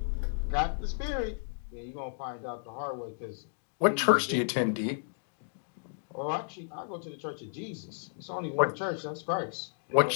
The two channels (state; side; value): silent; right; digital silence